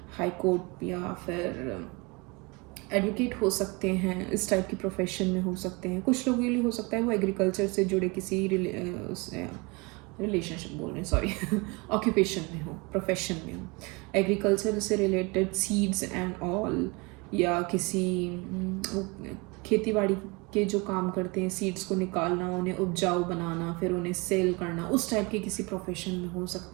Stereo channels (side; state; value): left; quieter; 27.5 dB